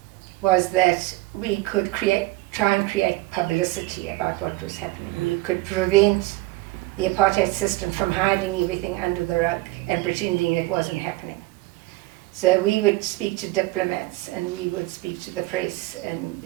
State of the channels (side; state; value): left; quieter; 19.7 dB